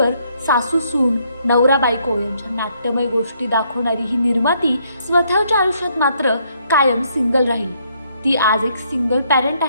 सासू सून, नवरा बायको यांच्या नाट्यमय गोष्टी दाखवणारी ही निर्माती स्वतःच्या आयुष्यात मात्र कायम सिंगल राहिली. ती आज एक सिंगल पॅरेंट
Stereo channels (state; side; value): inverted; both; correlation -0.70